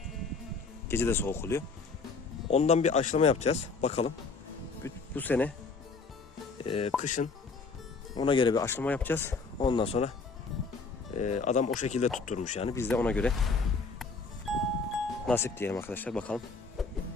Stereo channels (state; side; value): quieter; right; 4.4 dB